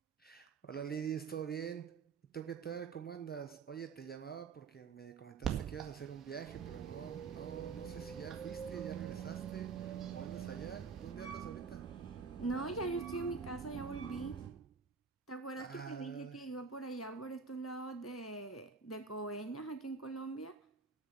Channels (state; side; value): quieter; left; 5.3 dB